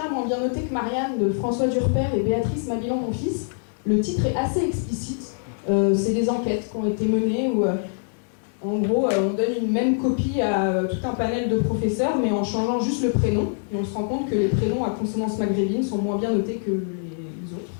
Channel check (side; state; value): right; silent; digital silence